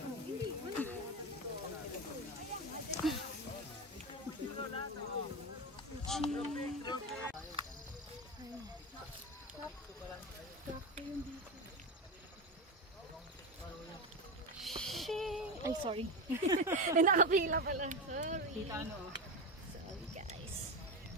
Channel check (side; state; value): both; normal; correlation 0.18